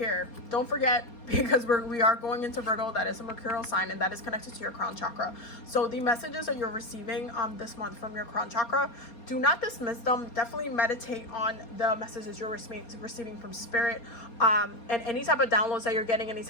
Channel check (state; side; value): late; right; 4.3 ms